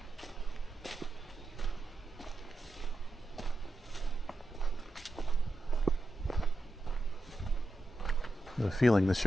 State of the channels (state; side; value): normal; both; correlation 0.89